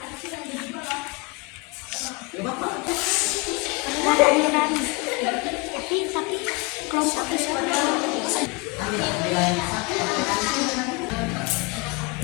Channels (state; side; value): quieter; right; 27.9 dB